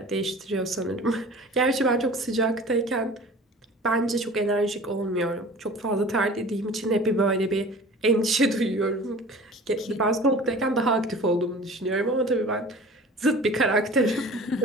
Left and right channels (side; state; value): both; normal; correlation 0.42